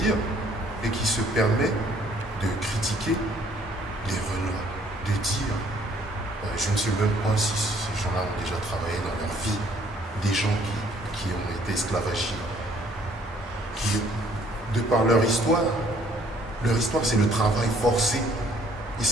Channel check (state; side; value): normal; both; correlation 0.61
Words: et qui se permet de critiquer les Renois, de dire, je ne sais même pas si ces gens-là ont déjà travaillé dans leur vie, des gens qui ont été esclavagisés, qui, de par leur histoire c'est le travail forcé. Et